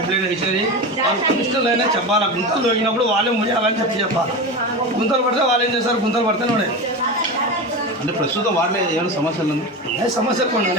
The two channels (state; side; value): normal; both; correlation 0.23